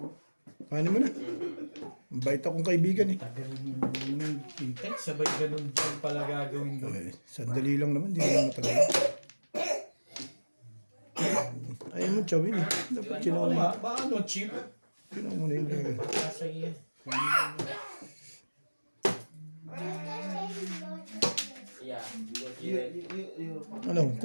Paano mo na? Bait akong kaibigan eh. Tagal nang kita. Sabay ganun din pala gagawin doon. Ay, sandali lang naman, di naman matagal. Ayaw mo chawin eh. Dapat sinaw na Ba ano, cheap? Sinaw mo na yung gagawin. Kasi yan. Ano,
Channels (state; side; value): inverted; both; correlation -1.00